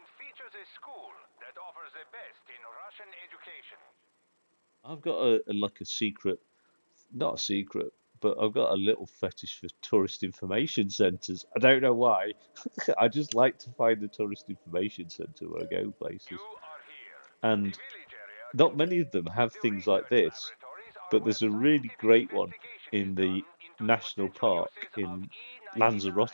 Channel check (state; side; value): inverted; both; correlation -1.00